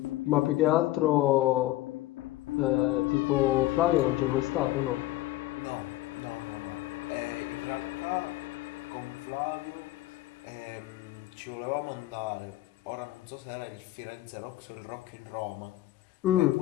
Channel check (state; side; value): quieter; right; 16.5 dB